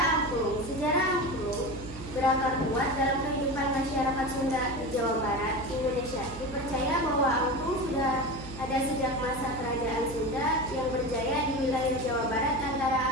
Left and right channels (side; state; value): right; noise; hum, 13 dB below the sound